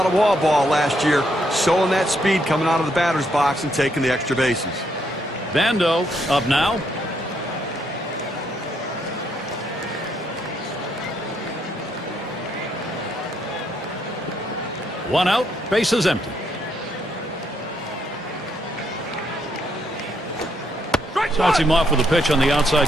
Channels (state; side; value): normal; both; correlation 0.74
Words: of wall ball last year, showing that speed coming out of the batter's box and taking the extra bases. Bando up now. One out, bases empty. Starts him off with a pitch on the outside